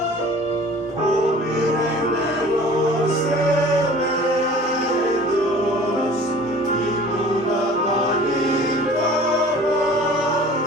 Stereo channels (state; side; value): normal; both; correlation 0.46